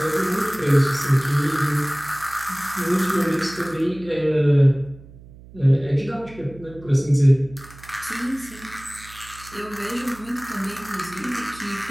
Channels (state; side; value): noise; right; hum, 20 dB below the sound